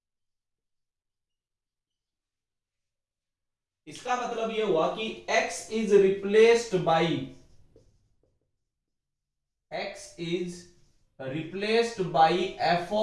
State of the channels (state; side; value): identical; both; correlation 1.00